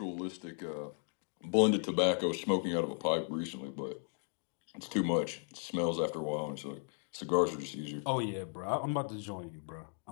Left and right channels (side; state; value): right; silent; 54 dB below the other